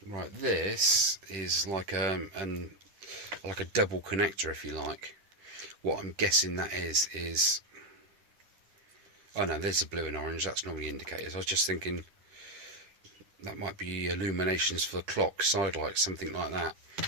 Right, this is like a double connector, if you like. What I'm guessing that is. Oh no, there's the blue and orange. That's normally indicators. I was just thinking that might be illuminations for the clock, side lights, something like that.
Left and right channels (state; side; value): late; left; 10 ms